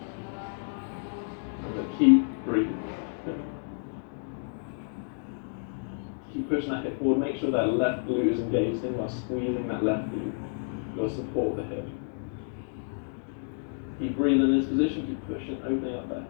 Keep breathing. Keep pushing that hip forward. Make sure that left glute is engaged in while squeezing that left glute. You'll support the hip. Keep breathing in this position. Keep pushing, opening up that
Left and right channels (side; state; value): right; silent; digital silence